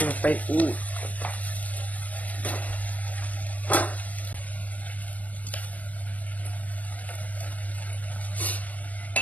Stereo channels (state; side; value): late; right; 0.074 ms